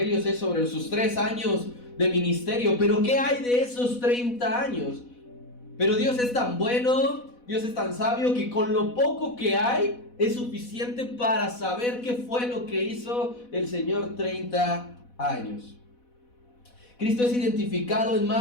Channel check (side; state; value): right; late; 4.1 ms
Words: es sobre sus 3 años de ministerio. Pero ¿qué hay de esos 30 años? Pero Dios es tan bueno, Dios es tan sabio, que con lo poco que hay es suficiente para saber qué fue lo que hizo el Señor 30 años. Cristo es identificado en